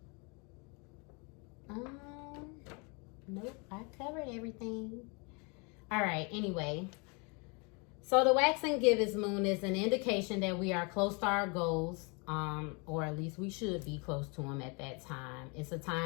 Nope, I covered everything. All right, anyway. So the Waxing Gibbous Moon is an indication that we are close to our goals, or at least we should be close to them at that time. It's a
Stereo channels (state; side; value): quieter; right; 31.8 dB